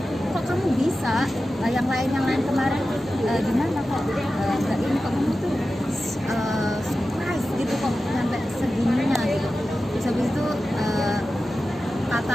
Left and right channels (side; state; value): both; normal; correlation 0.93